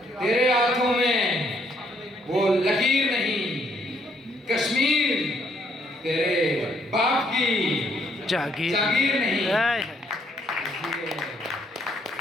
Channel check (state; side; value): normal; both; correlation 0.69